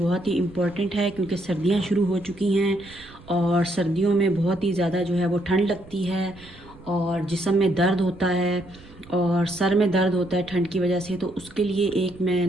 ही इम्पोर्टेंट है, क्योंकि सर्दियाँ शुरू हो चुकी हैं और सर्दियों में बहुत ही ज़्यादा जो है वो ठंड लगती है और जिस्म में दर्द होता है और सर में दर्द होता है ठंड की वजह से। तो उसके लिए एक मैं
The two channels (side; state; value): right; noise; rumble, 22 dB below the sound